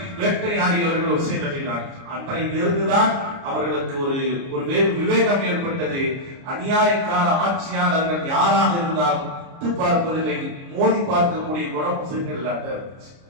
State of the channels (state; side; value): late; left; 29 ms